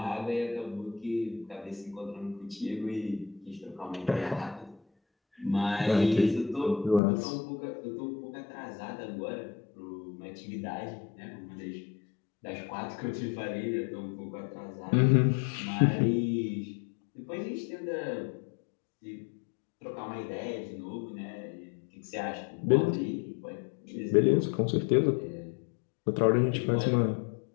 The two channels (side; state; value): right; drops out; at 7.0 s